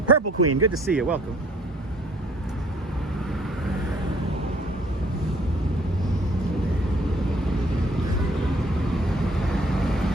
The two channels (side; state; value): both; normal; correlation 0.59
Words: Purple Queen, good to see you, welcome.